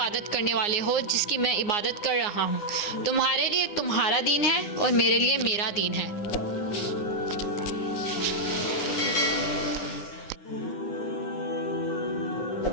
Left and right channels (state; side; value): late; right; 9.7 ms